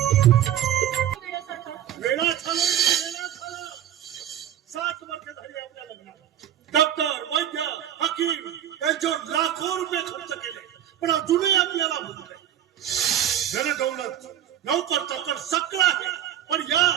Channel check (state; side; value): quieter; left; 11.0 dB